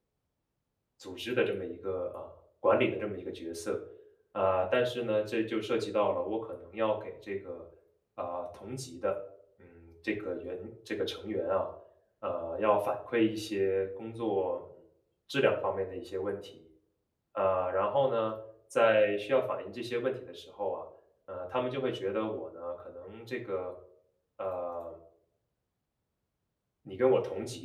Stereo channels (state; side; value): identical; both; correlation 1.00